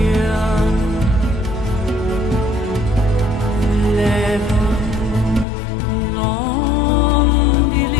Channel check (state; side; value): drops out; right; at 5.5 s